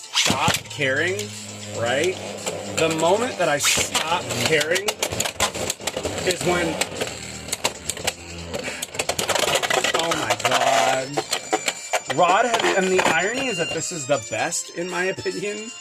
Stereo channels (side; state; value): both; identical; correlation 1.00